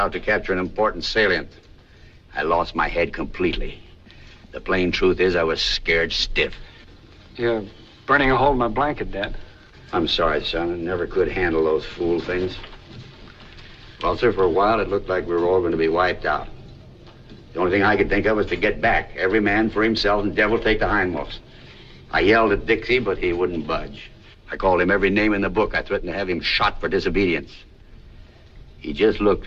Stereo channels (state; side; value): identical; both; correlation 1.00